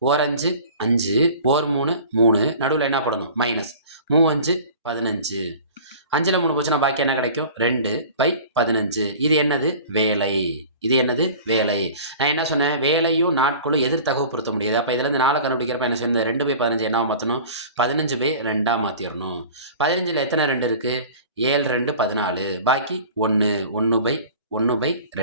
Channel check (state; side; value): inverted; both; correlation -0.42